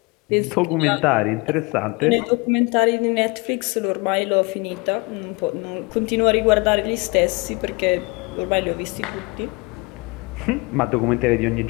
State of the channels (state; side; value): quieter; right; 28.1 dB